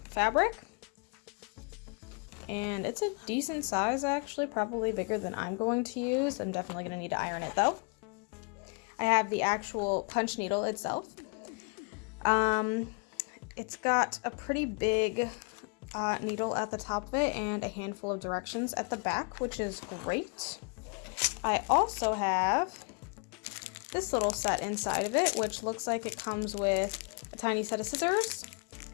fabric. And it's a decent size actually, probably bigger than I'm going to use. I'm definitely going to need to iron it though. I have the actual punch needle itself. It's got a pretty big needle at the top of it and a handful of directions at the back, which is great. I also have this little set inside of it, which looks like it comes with a tiny set of scissors,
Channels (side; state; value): right; quieter; 35.6 dB